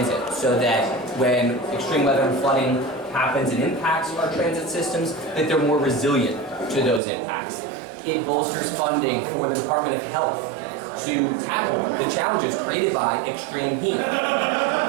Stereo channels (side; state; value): left; drops out; at 7.0 s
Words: so that when extreme weather and flooding happens and impacts our transit systems, that they're more resilient to those impacts. It bolsters funding for the Department of Health to tackle the challenges created by extreme heat.